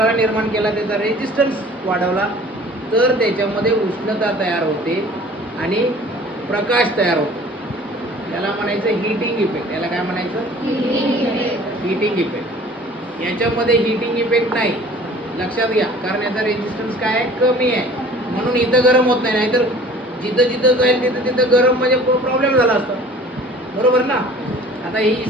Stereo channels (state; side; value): normal; both; correlation 0.48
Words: निर्माण केला, त्याचा रेजिस्टन्स वाढवला, तर त्याच्यामध्ये उष्णता तयार होते आणि प्रकाश तयार होतो. याला म्हणायचं हीटिंग इफेक्ट. याला काय म्हणायचं? Heating effect. याच्यामध्ये हीटिंग इफेक्ट नाही, लक्षात घ्या, कारण याचा रेजिस्टन्स काय आहे? कमी आहे, म्हणून इथं गरम होत नाही. नाहीतर जिथं जिथं जाईल तिथं तिथं गरम म्हणजे प्रॉब्लेम झाला असता, बरोबर ना. आता ही